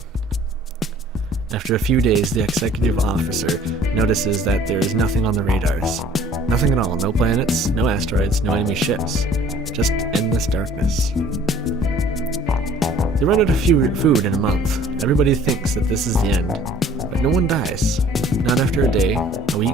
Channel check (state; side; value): normal; both; correlation 0.53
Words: After a few days, the executive officer notices that there is nothing on the radars. Nothing at all, no planets, no asteroids, no enemy ships. Just endless darkness. They run out of food in a month. Everybody thinks that this is the end. But no one dies. Not after a day, a